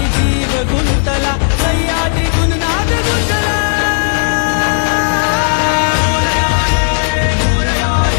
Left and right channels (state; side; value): silent; right; digital silence